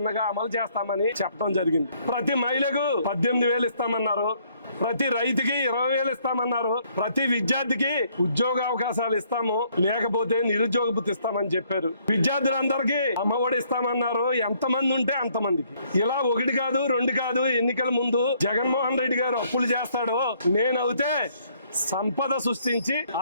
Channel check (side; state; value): both; inverted; correlation -0.67